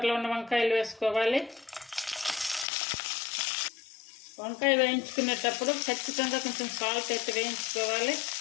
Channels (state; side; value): drops out; right; at 2.7 s